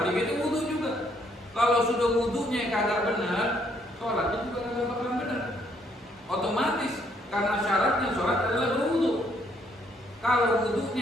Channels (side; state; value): both; normal; correlation 0.69